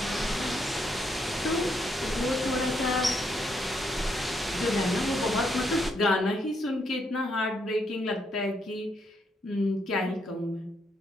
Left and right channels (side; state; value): both; normal; correlation 0.76